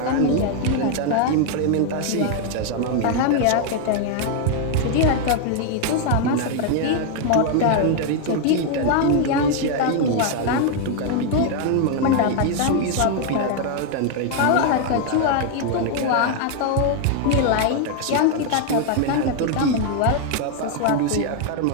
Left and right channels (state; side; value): different; both; correlation 0.00